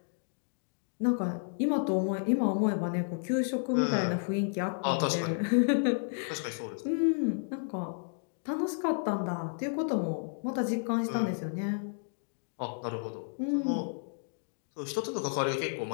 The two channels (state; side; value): silent; right; digital silence